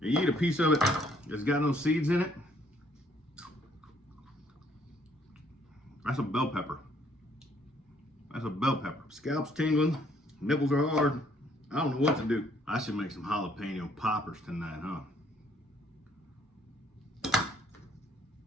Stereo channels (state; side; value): normal; both; correlation 0.65